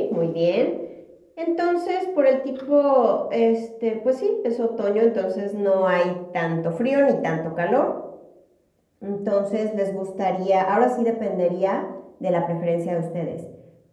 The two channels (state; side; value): identical; both; correlation 1.00